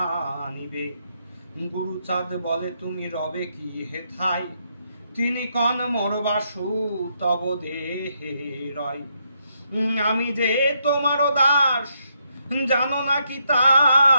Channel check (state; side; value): inverted; both; correlation -0.77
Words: গুরুচাঁদ বলে তুমি রবে কি হেথায়, তিনি কন মোর বাসু তব দেহে রয়। আমি যে তোমার দাস, জানো নাকি